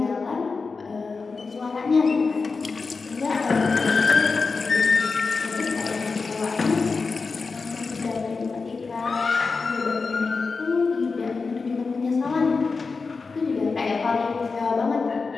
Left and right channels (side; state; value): right; quieter; 4.4 dB